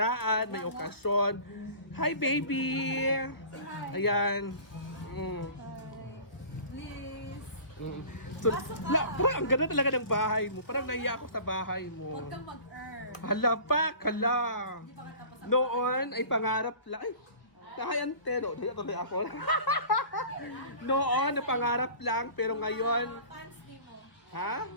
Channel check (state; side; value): late; right; 1.2 ms